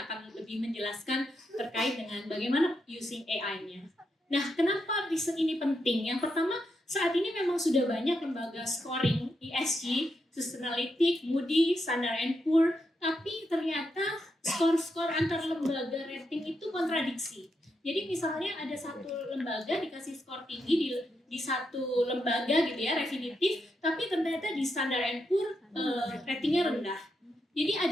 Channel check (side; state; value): both; normal; correlation 0.83